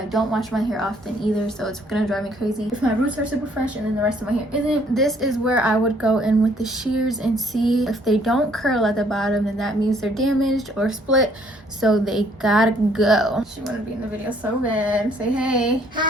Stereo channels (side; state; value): both; normal; correlation 0.63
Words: don't wash my hair often either, so it's gonna drive me crazy if my roots are super fresh and then the rest of my hair isn't. This is where I would go in with the shears and see if they don't curl at the bottom, then that means they're damaged or split, so they gotta go. She wanna be in the video so bad. Say hey.